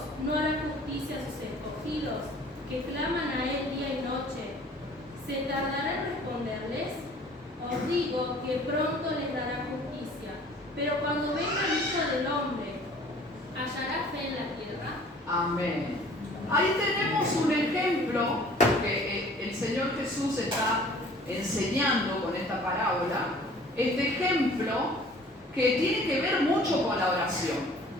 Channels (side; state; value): both; normal; correlation 0.51